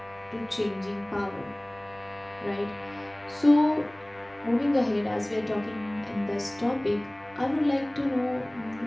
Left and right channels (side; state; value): right; noise; rumble, 26 dB below the sound